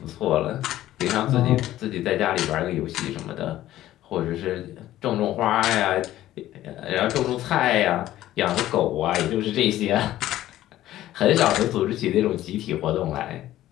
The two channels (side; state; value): right; quieter; 14.0 dB